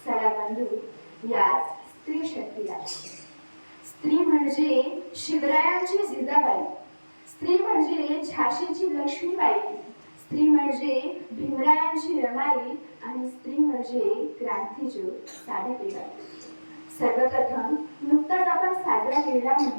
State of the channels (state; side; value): inverted; both; correlation -1.00